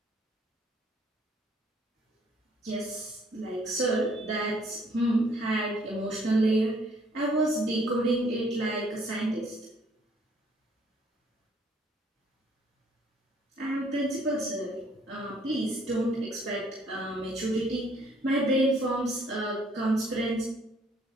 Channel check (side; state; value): both; normal; correlation 0.63